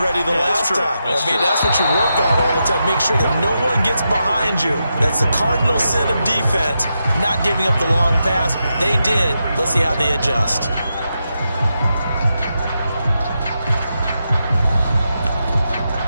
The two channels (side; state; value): both; inverted; correlation -0.86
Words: ready the last time. That's what you work on all the time. Make sure that no one gets behind you. That's the cardinal sin of defense, not giving up the long pass. They did. Let's see how they adjust.